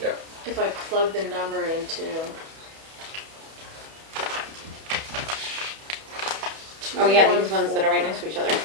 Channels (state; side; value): late; left; 31 ms